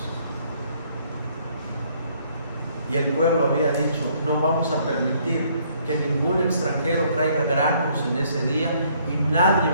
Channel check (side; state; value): both; inverted; correlation -0.65